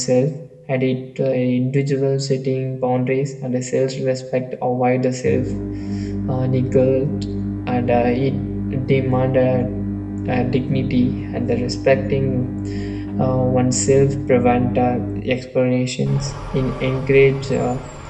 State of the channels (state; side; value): identical; both; correlation 1.00